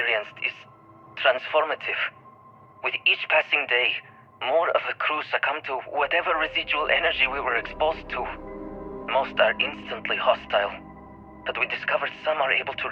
is transformative. With each passing day, more of the crew succumb to whatever residual energy we were exposed to. Most are instantly hostile, but we discovered some are able to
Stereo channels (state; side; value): identical; both; correlation 1.00